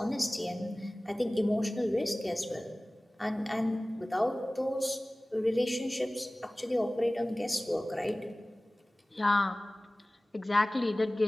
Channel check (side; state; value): both; normal; correlation 0.98